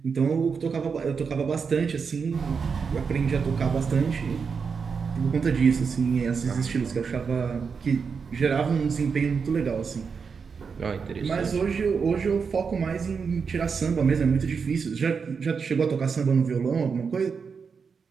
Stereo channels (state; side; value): quieter; left; 5.7 dB